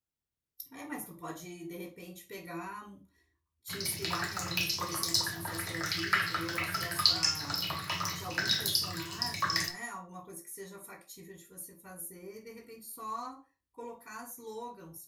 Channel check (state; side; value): identical; both; correlation 1.00